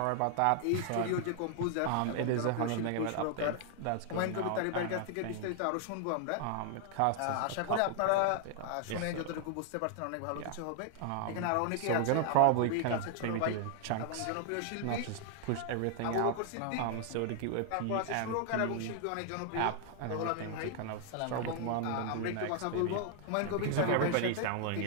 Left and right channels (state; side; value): different; both; correlation 0.00